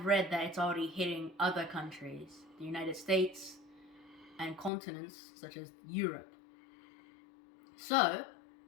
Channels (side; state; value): right; drops out; at 4.7 s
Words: read that it's already hitting other countries, the United States, and continents such as Europe. So,